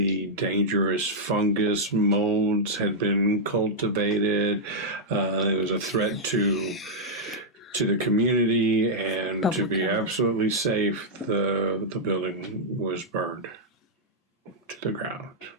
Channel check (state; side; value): normal; both; correlation -0.07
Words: dangerous fungus molds had been cultivated. It was a threat to the community, and to be absolutely safe, the building was burned. to the ground.